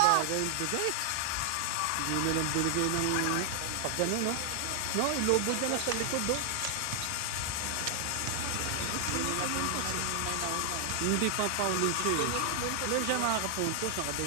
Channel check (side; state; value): both; different; correlation 0.00